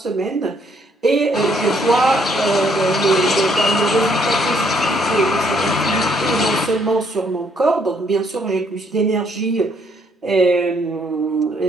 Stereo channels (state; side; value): normal; both; correlation 0.68